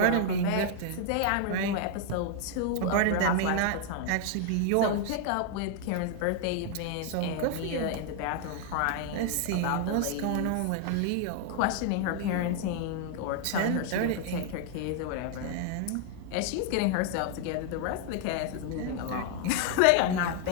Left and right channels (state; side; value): different; both; correlation 0.00